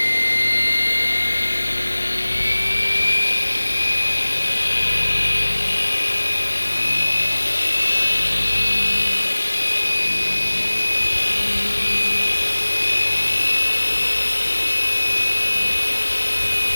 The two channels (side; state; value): both; inverted; correlation -1.00